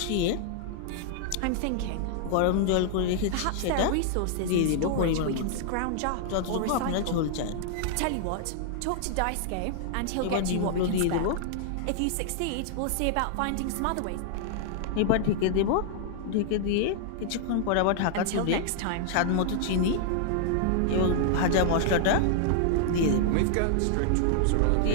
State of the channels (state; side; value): different; both; correlation -0.01